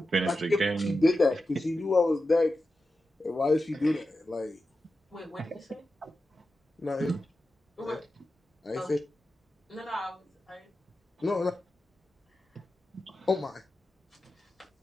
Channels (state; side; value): normal; both; correlation 0.92